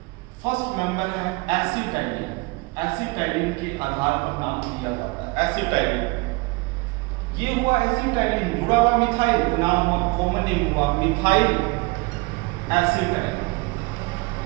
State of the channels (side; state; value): left; quieter; 26.0 dB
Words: फर्स्ट मेंबर है एसिटाइलिन, एसिटाइलिन के आधार पर नाम दिया जाता है एसिटाइलिन। ये हुआ एसिटाइलिन, जुड़ा हुआ मिथाइल, नाम हुआ कॉमन नेम हुआ मिथाइल एसिटाइलिन।